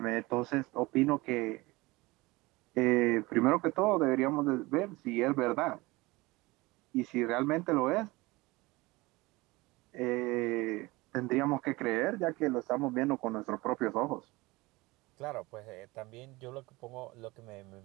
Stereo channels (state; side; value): quieter; left; 22.1 dB